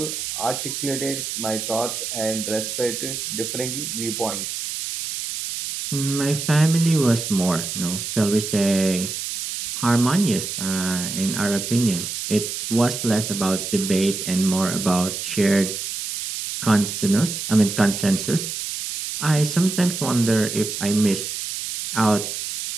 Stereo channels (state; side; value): noise; right; hiss, 5 dB below the sound